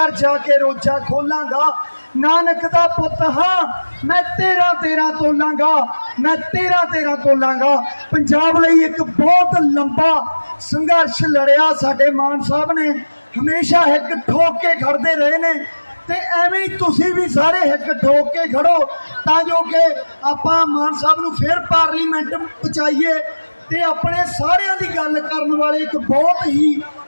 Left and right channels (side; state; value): both; inverted; correlation -1.00